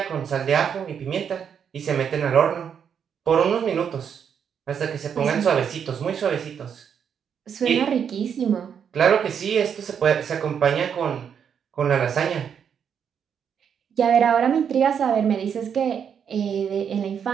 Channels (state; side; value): quieter; left; 7.7 dB